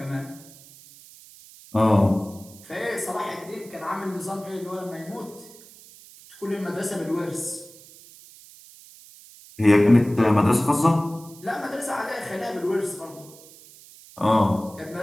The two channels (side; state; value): right; noise; hiss, 21 dB below the sound